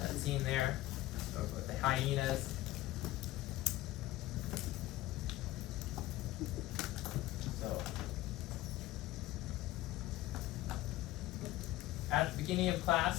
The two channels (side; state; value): right; quieter; 16.2 dB